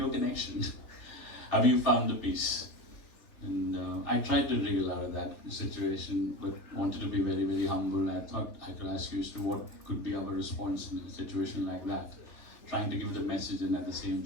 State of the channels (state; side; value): late; right; 3.4 ms